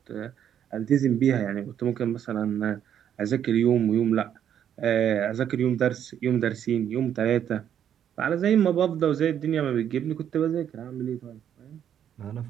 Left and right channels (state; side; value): quieter; left; 9.5 dB